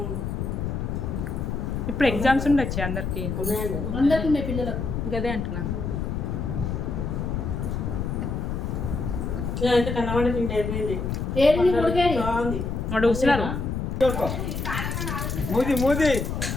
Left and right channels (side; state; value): left; noise; rumble, 2 dB below the sound